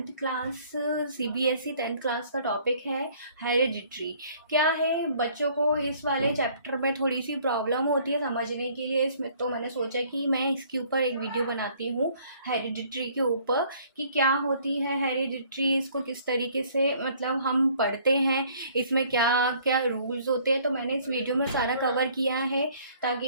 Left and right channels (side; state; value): both; inverted; correlation -0.58